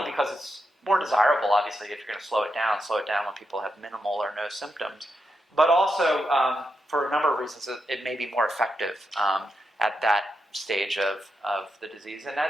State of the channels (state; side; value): normal; both; correlation 0.85